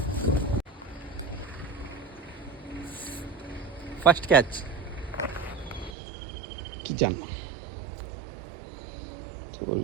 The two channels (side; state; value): left; drops out; at 5.9 s